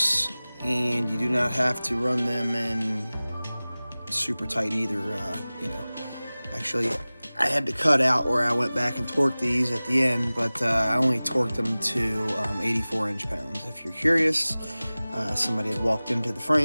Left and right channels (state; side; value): inverted; both; correlation -0.99